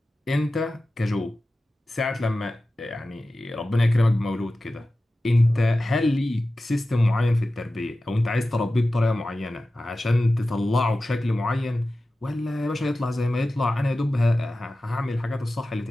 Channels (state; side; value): normal; both; correlation 0.95